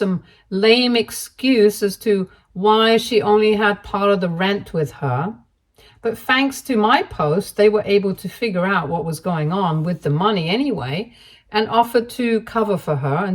lame excuse as to why she only had part of the rent with her. But thanks to my post, they were able to figure out what was going on with the money anyway and offered to cover for her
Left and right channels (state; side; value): identical; both; correlation 1.00